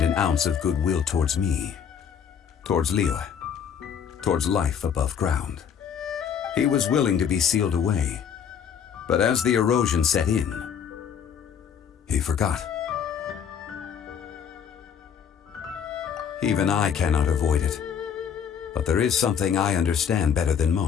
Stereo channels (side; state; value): right; quieter; 7.7 dB